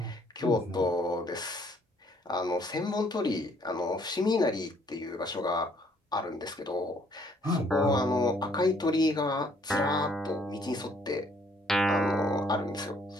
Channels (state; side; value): normal; both; correlation 0.64